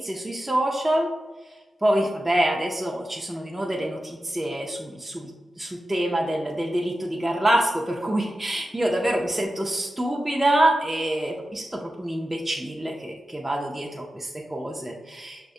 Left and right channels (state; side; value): normal; both; correlation 0.92